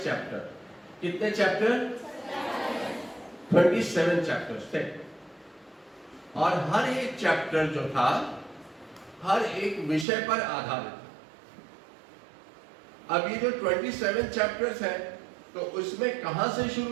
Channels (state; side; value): drops out; left; at 10.1 s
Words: चैप्टर। कितने चैप्टर? 27 चैप्टर्स थे और हर एक चैप्टर जो था हर एक विषय पर आधारित था। अब ये जो 27 चैप्टर्स हैं, तो उसमें कहां से